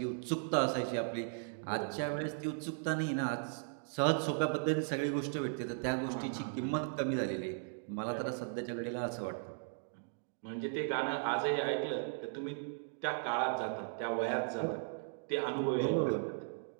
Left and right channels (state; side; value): silent; left; digital silence